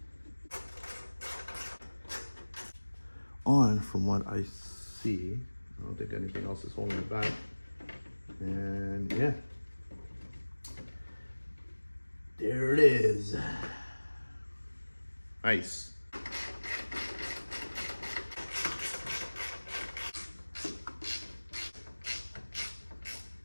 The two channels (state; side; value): inverted; both; correlation -1.00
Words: On from what I see, I don't think anything else is holding it back. And yeah, there it is. Nice.